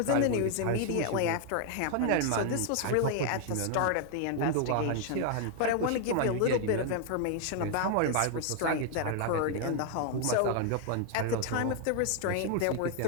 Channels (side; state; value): both; different; correlation 0.00